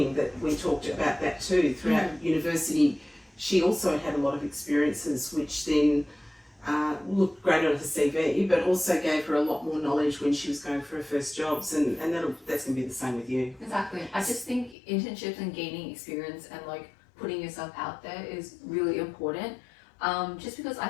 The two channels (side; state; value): right; drops out; at 14.8 s